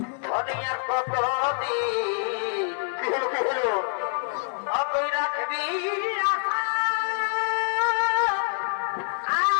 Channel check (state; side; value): silent; right; 61 dB below the other